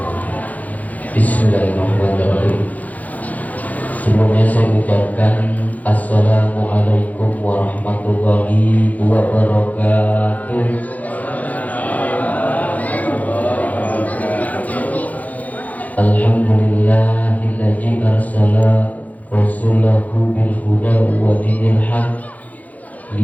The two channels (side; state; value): right; late; 0.077 ms